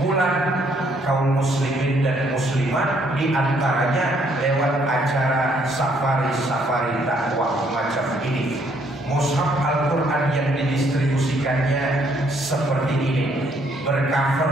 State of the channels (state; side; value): normal; both; correlation 0.68